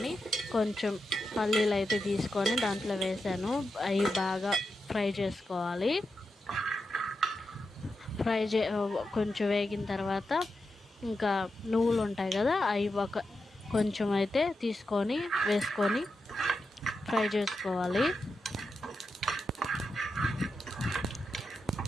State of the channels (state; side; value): normal; both; correlation 0.88